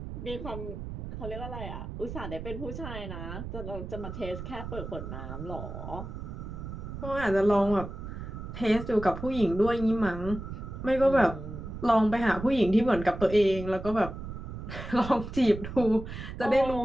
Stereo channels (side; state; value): right; noise; rumble, 8 dB below the sound